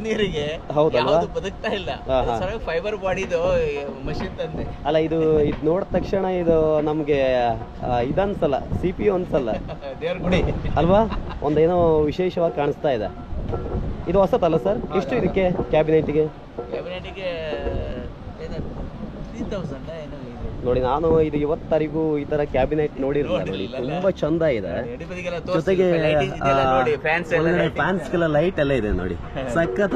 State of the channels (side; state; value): both; identical; correlation 1.00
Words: ನೀರಿಗೆ ಹೌದಲ್ವಾ? ಯಾವುದು ಬದುಕ್ತಾ ಇಲ್ಲ. ಫೈಬರ್ ಬಾಡಿದು ಮಷಿನ್ ತಂದೆ. ಅಲ್ಲ, ಇದು ನೋಡಿದ ತಕ್ಷಣ ಇದು ನಮ್ಗೆ ಇದನ್ಸಲ್ಲ, CPU ಅನ್ಸಲ್ಲ, ದೇವ್ರ ಗುಡಿ ಅಲ್ವಾ? ಒಂದೇನೋ ವಿಶೇಷವಾಗಿ ಕಾಣಿಸ್ತಾ ಇದೆ. ಇದು ಹೊಸತಲ್ಲ ಸರ್? ಎಷ್ಟು ಇದಕ್ಕೆ ಕ್ಯಾಬಿನೆಟ್ಗೆ? 3000 ಏನೋ ಇದೆ ನೋಡಿ. ನಾನು ಇದು ಇವತ್ತರಿಗೂ ಈ ತರ ಕ್ಯಾಬಿನೆಟ್ ನೋಡಿರಲಿಲ್ಲ. ನೋಡಿ, ತುಂಬಾ ಚಂದ ಇದೆ. ಜೊತೆಗೆ ಫ್ಯಾನ್ಸ್ಗೆಲ್ಲ ಲೈಟ್ ಎಲ್ಲ ಇದೆ ನೋಡಿ,